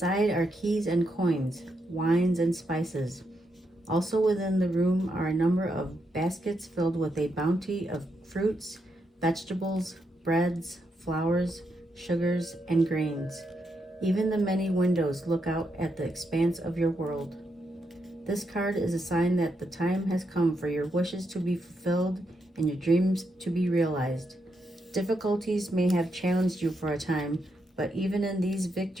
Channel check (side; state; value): both; normal; correlation 0.81